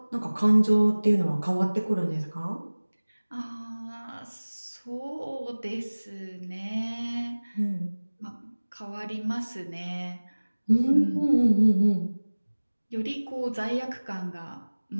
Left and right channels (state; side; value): inverted; both; correlation -1.00